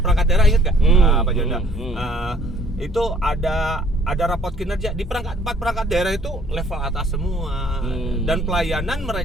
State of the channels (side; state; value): both; normal; correlation 0.59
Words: perangkat daerah, ingat gak? Pak Jonda? Itu ada raport kinerja di 4 perangkat daerah itu level atas semua. Dan pelayanan